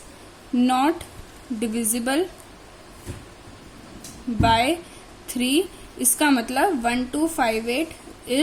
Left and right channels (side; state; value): both; identical; correlation 1.00